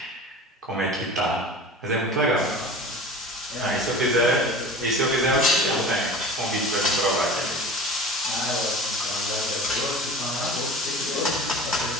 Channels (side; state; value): both; normal; correlation 0.37